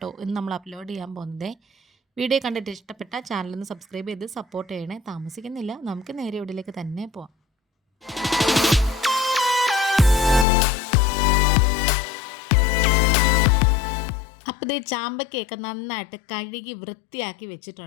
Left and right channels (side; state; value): right; drops out; at 10.5 s